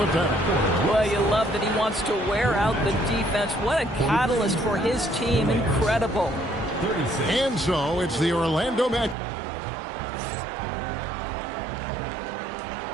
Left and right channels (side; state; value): left; drops out; at 9.2 s